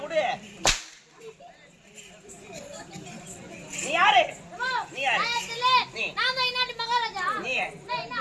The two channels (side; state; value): both; identical; correlation 1.00